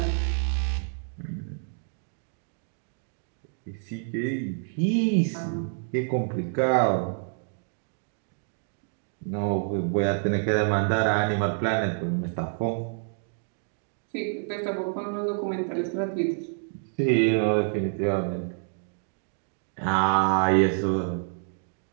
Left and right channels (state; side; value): silent; left; 59 dB below the other